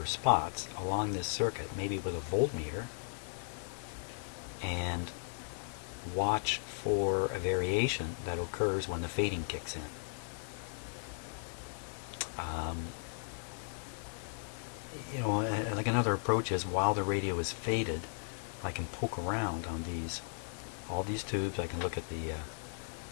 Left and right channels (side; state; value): right; silent; digital silence